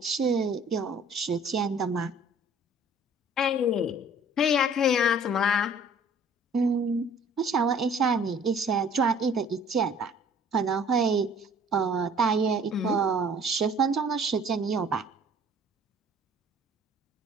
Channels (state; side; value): normal; both; correlation 0.52